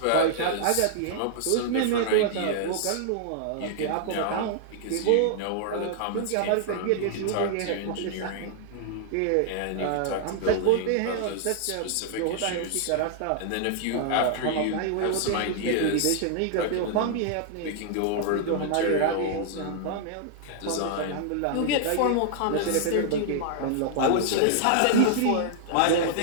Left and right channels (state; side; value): different; both; correlation -0.01